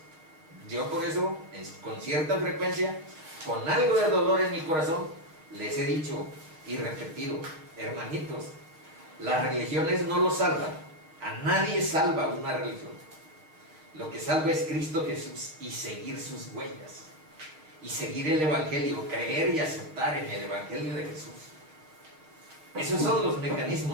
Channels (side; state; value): left; late; 6.4 ms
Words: Yo por eso, con cierta frecuencia, con algo de dolor en mi corazón, les he dicho, y repetido, hermanitos, las religiones no lo salvan. A nadie salva una religión. Lo que salva es Cristo Jesús y seguir sus huellas. Y seguir el Evangelio, creer y aceptar en el Evangelio de Jesús. Esos son los